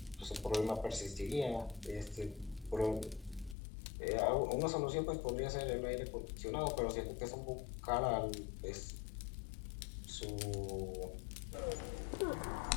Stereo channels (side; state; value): right; drops out; at 3.6 s